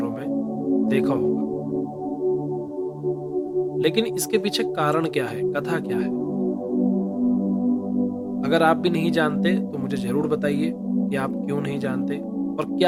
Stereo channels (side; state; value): both; identical; correlation 1.00